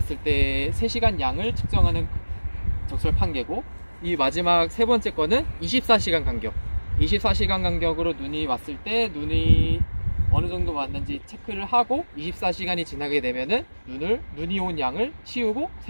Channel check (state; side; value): inverted; both; correlation -1.00